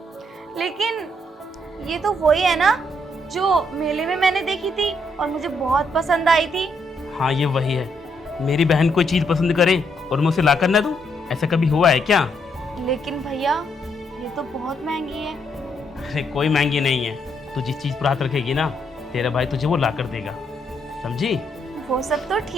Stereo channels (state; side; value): normal; both; correlation 0.75